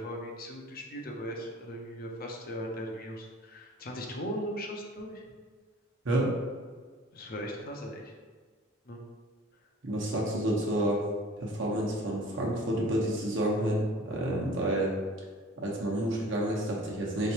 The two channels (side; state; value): both; normal; correlation 0.48